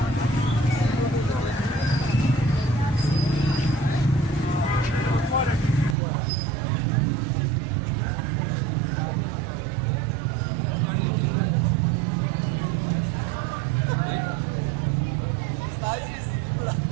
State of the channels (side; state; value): left; drops out; at 6.0 s